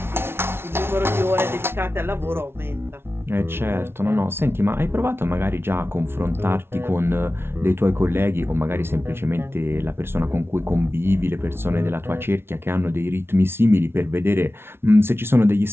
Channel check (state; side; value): late; left; 0.12 ms